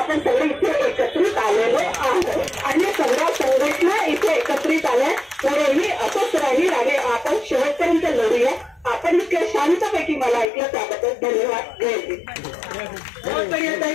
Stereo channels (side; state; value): right; drops out; at 10.5 s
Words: सगळे इथे एकत्रित आलेलो आहोत आणि सगळ्या